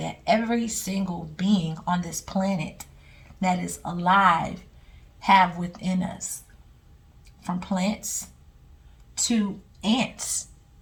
every single being on this planet that is alive have within us. From plants to ants.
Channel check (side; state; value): both; identical; correlation 1.00